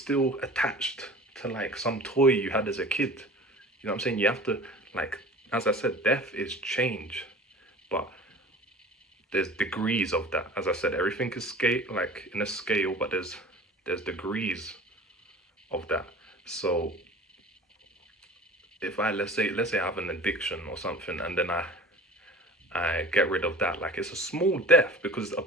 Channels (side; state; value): both; normal; correlation 0.41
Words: attached to like some toy you had as a kid. You know what I'm saying? You have to, like, as I said, death is change, but there's degrees of that. As I said, everything is scale, like in a scale, but there's degrees of that. So if let's say I have an addiction or something, and then I get rid of that, like, it's a small death, because a